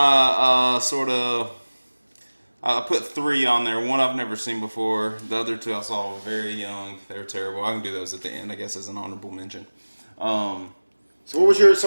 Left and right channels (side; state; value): both; inverted; correlation -1.00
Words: sort of... I put 3 on there. One I've never seen before. The other 2 I saw very young. They were terrible. I can do those at the end, I guess, as an honorable mention. So what was your...